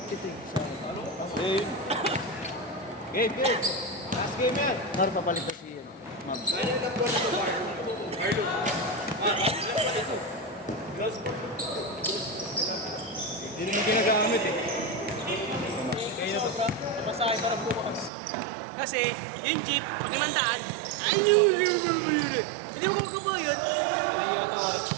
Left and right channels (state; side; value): drops out; left; at 18.1 s